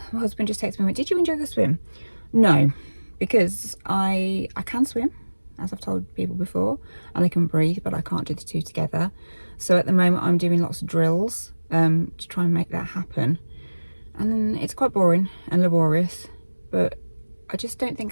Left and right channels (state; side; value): inverted; both; correlation -1.00